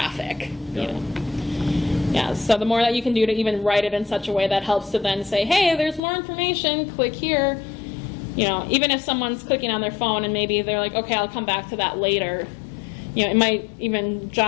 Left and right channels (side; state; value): right; drops out; at 6.0 s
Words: Yeah, so the more that you can do to even write it in such a way that helps to then say, hey, there's more information, click here. Even if someone's clicking on their phone and maybe they're like, okay, I'll come back to that later. It might even